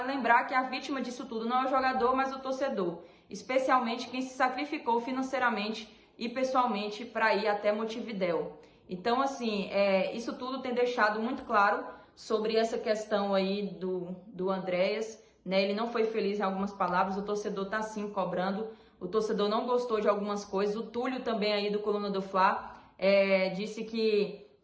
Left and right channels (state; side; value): identical; both; correlation 1.00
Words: lembrar que a vítima disso tudo não é o jogador, mas o torcedor. Especialmente quem se sacrificou financeiramente e pessoalmente para ir até Montevidéu. Então, assim, isso tudo tem deixado muito claro sobre essa questão aí do Andréas, né? Ele não foi feliz em algumas palavras, o torcedor tá sim cobrando, o torcedor não gostou de algumas coisas. O Túlio também aí do Coluna do Fla disse que